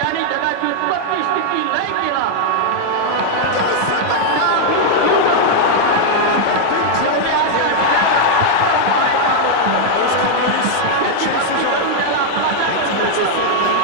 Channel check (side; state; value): both; different; correlation 0.00